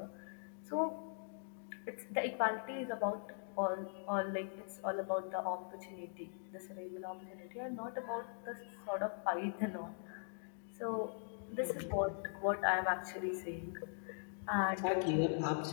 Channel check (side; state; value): right; silent; digital silence